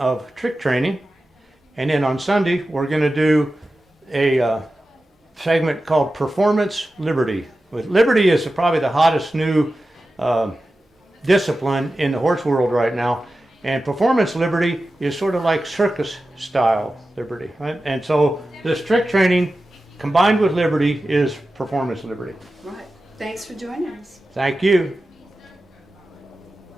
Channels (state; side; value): normal; both; correlation 0.94